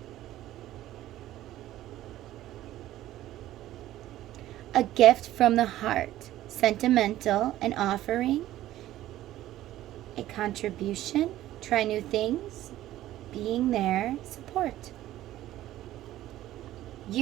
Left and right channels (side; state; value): left; quieter; 14.2 dB